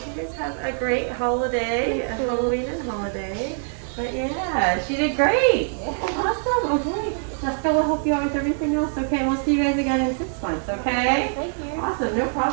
you guys have a great holiday, a Halloween and holiday. But yeah, she did great. Awesome. Okay. Jessica will help you out with everything else. Okay, we'll see you guys again in 6 months. Okay. Thank you. Awesome. No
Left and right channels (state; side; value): silent; left; 59 dB below the other